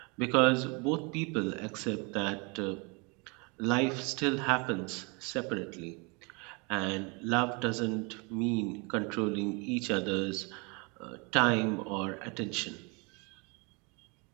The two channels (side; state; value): left; quieter; 30.7 dB